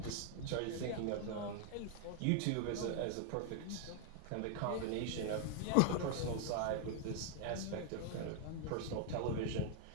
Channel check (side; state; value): both; different; correlation 0.00